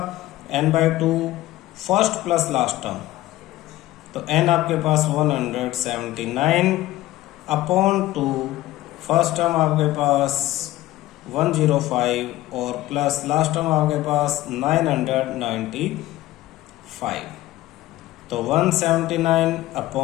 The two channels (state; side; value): quieter; right; 16.1 dB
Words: n/2 first plus last term, तो n आपके पास 179 अपॉन 2, फर्स्ट टर्म आपके पास 105 और प्लस लास्ट टर्म आपके पास 995, तो 179